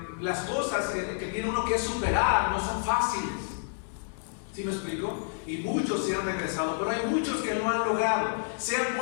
las cosas que tiene uno que superar no son fáciles. ¿Sí me explico? Y muchos se han regresado, pero hay muchos que no han logrado. Se han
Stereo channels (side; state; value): right; silent; digital silence